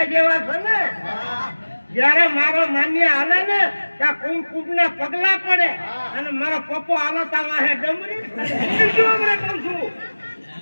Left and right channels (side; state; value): both; inverted; correlation -1.00